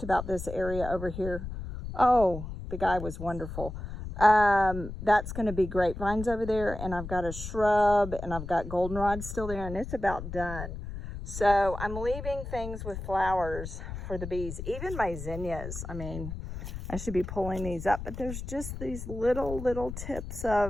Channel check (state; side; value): noise; left; rumble, 8 dB below the sound